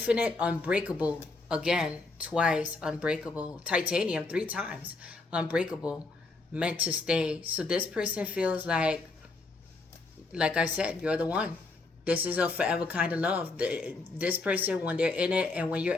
unbreakable. Again, twice, unbreakable. Titanium, 3 times. Unbreakable. Meant to stay. So this person feels like I said, you're the one. This is a forever kind of love. This person, when they're in it and when you're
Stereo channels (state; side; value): quieter; right; 3.5 dB